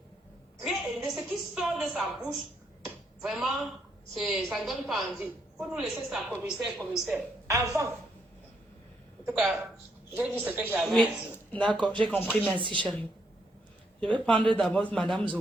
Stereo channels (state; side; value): normal; both; correlation 0.75